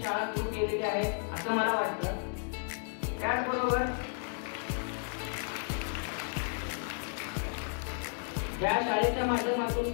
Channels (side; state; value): right; silent; 56 dB below the other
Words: शाळा सुरू केलेली आहे असं मला वाटतं. त्याचबरोबर या शाळेच्या माध्यमातून